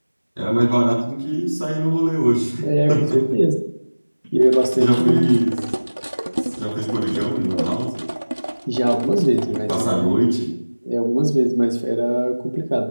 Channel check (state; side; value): inverted; both; correlation -1.00